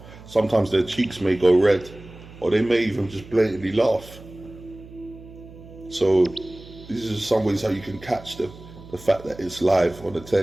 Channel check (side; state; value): right; noise; hum, 19 dB below the sound